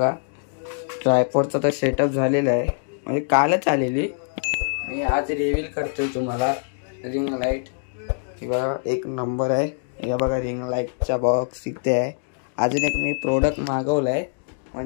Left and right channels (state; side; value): silent; right; digital silence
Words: ट्रायपॉडचा तर सेटअप झालेला आहे, म्हणजे कालच आलेली। मी आज रिव्हील करतोय तुम्हाला रिंग लाईट। ही बघा, एक नंबर आहे। या बघा, रिंग लाईटचा बॉक्स इथे आहे। अजून एक मी प्रोडक्ट मागवलाय,